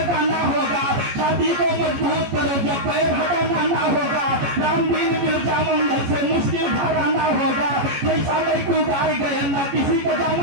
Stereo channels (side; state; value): left; late; 14 ms